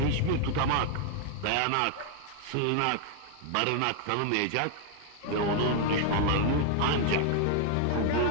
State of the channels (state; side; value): different; both; correlation 0.00